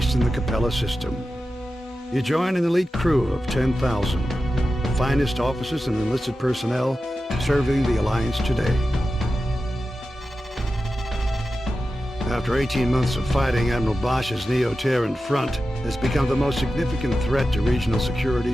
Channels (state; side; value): normal; both; correlation 0.92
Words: in the Capella system. You join an elite crew of 10,000, the finest officers and enlisted personnel serving the Alliance today. After 18 months of fighting, Admiral Bosch's Neo-Terran front has become the most significant threat to regional